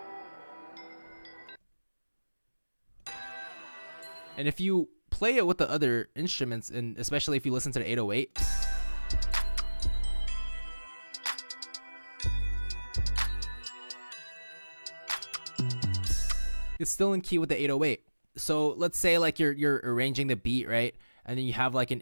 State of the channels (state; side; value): inverted; both; correlation -1.00